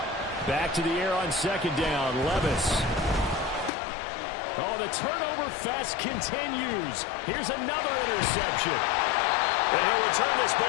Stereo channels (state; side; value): drops out; right; at 3.7 s